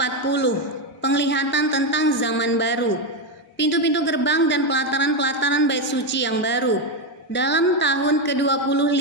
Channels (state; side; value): normal; both; correlation 0.09